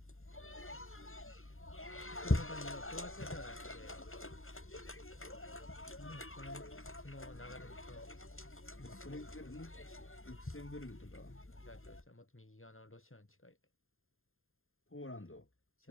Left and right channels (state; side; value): late; right; 0.61 ms